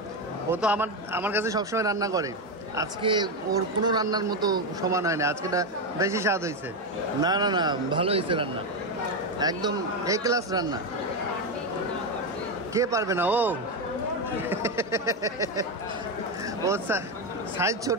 ও তো আমার কাছে সবসময় রান্না করে, আজকে ওর কোনো রান্নার মতো সমান হয় না, আজকেটা বেশি স্বাদ হয়েছে। না না না ভালো হয়েছে রান্না, একদম এ ক্লাস রান্না। কে পারবে না? ও ওর সাইজ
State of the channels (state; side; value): normal; both; correlation 0.10